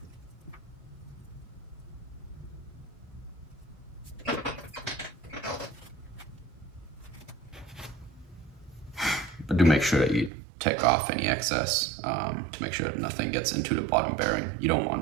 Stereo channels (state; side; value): drops out; left; at 10.3 s